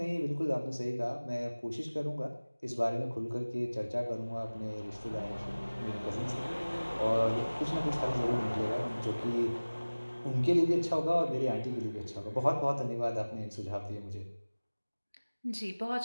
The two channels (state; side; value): inverted; both; correlation -1.00